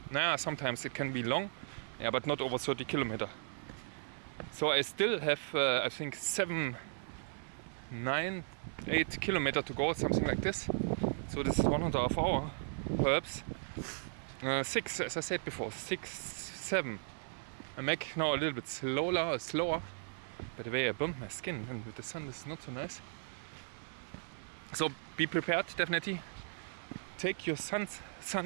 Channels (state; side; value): silent; left; 53 dB below the other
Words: Sometimes it can be long, but not over 30 kilometers. So I still have, I think 7, 9, 8 kilometers to go, something like this. So this is 1.5 hours, perhaps. 6, as I said before, 6, 7. I make now a little bit slower. By the way, I bumped my skin, and with the sun this is not so nice. So be prepared, definitely. Take your